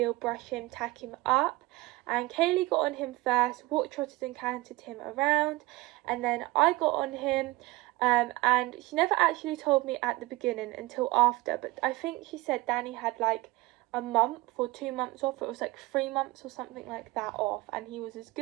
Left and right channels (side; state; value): left; quieter; 21.0 dB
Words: brush him, tack him up, and Kaylee got on him first, walked, trotted and cantered him around, and then I got on him, and she never actually told me at the beginning until after, but I think she said Danny had like a month or 2 months off. It was like 3 months or something like that off, and he was as